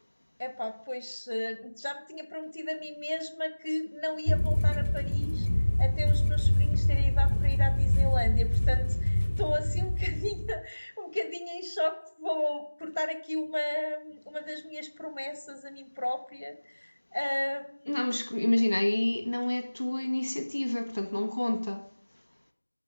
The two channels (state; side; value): inverted; both; correlation -1.00